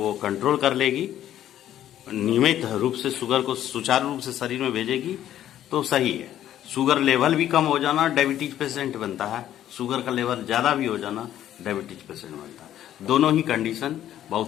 कंट्रोल कर लेगी, नियमित रूप से शुगर को सुचारू रूप से शरीर में भेजेगी, तो सही है। शुगर लेवल भी कम हो जाना डायबिटीज पेशेंट बनता है, शुगर का लेवल ज्यादा भी हो जाना डायबिटीज पेशेंट बनता है। दोनों ही कंडीशन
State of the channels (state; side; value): quieter; right; 11.8 dB